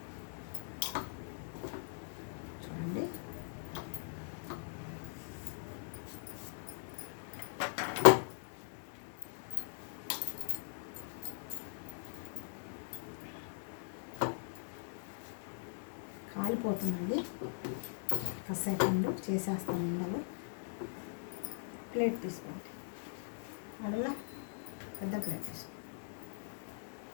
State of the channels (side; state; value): right; silent; digital silence